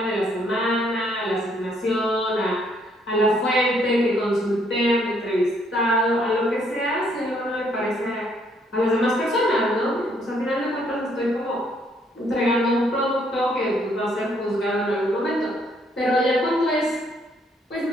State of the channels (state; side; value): normal; both; correlation 0.69